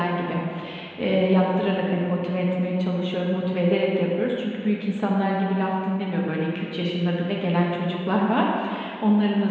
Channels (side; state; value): both; identical; correlation 1.00